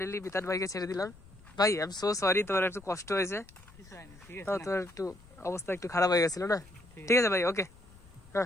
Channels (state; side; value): noise; left; rumble, 23 dB below the sound